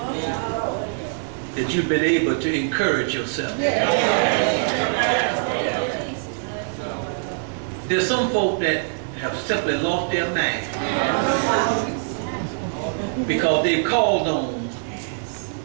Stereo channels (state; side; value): silent; left; digital silence